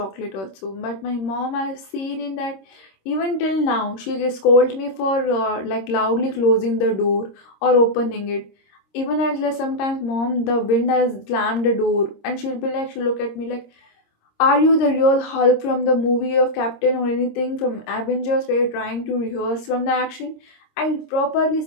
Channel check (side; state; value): right; late; 26 ms